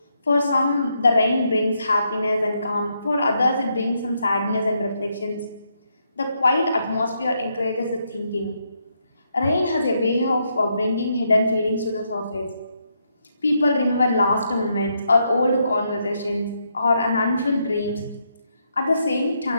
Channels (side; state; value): both; inverted; correlation -0.78